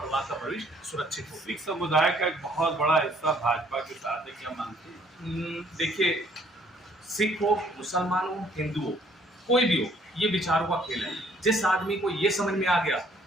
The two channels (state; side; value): normal; both; correlation 0.62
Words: का भविष्य सुरक्षित हो। सिख समुदाय का एक बहुत बड़ा हिस्सा भाजपा के साथ है, क्या मानते हैं? देखिए सिख हो, मुसलमान हो, हिंदू हो, कोई भी हो, ये विचारों का खेल है। जिस आदमी को ये समझ में आ गया,